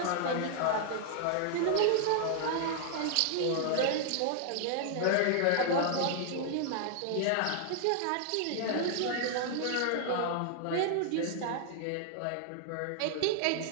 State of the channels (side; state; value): both; different; correlation 0.00